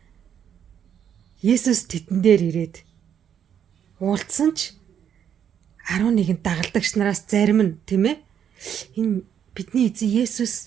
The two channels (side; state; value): left; quieter; 8.8 dB